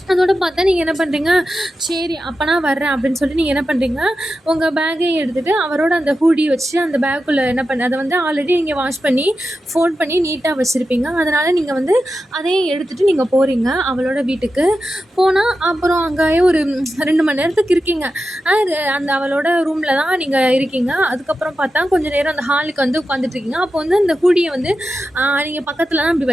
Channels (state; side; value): normal; both; correlation 0.91